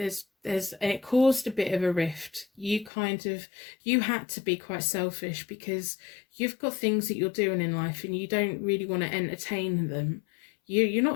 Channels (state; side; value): drops out; right; at 2.9 s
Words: It caused a bit of a rift. You had to be quite selfish because you've got things that you're doing in life and you don't really want to entertain them. You're